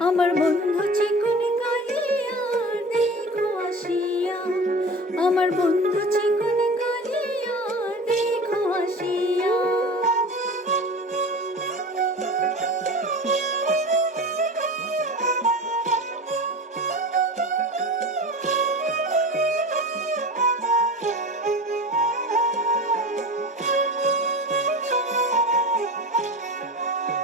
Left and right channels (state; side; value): normal; both; correlation 0.33